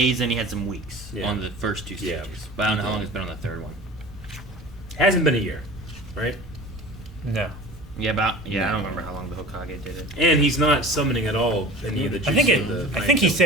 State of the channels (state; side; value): normal; both; correlation 0.38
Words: and he had some weeks Yeah. on the first two stages. Yeah. But I don't know how long it's been on the third one. Hasn't been a year, right? No. Yeah, I don't remember how long the Hokage did it. And he's not summoning at all any of the I think jutsu of the I think he Fang